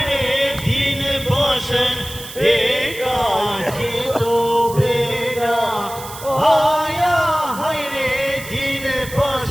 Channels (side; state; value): right; noise; hiss, 14 dB below the sound